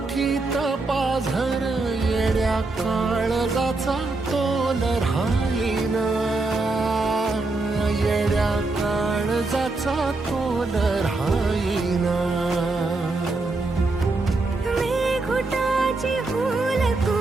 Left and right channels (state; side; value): quieter; left; 3.3 dB